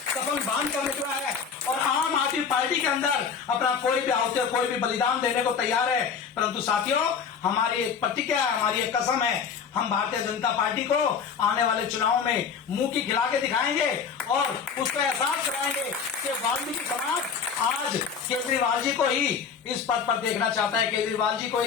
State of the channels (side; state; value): right; quieter; 6.4 dB